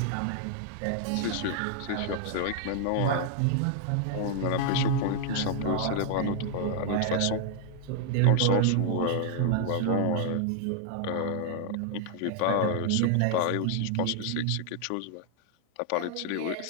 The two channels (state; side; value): different; both; correlation -0.01